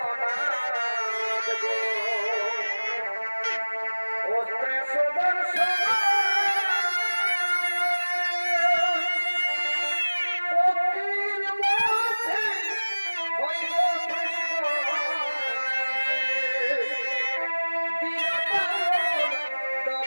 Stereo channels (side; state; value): both; inverted; correlation -1.00